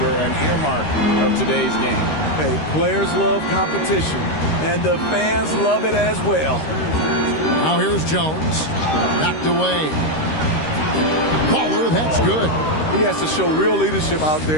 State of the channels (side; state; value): right; late; 13 ms